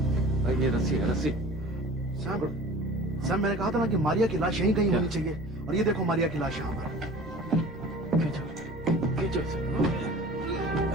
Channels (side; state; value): both; normal; correlation 0.42